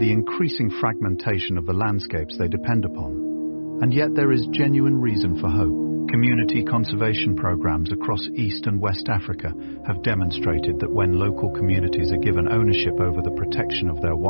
increasing fragmentation of the landscapes they depend upon. And yet there is genuine reason for hope. Community conservation programs across East and West Africa have demonstrated that when local communities are given ownership over the protection of their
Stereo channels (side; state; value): both; inverted; correlation -1.00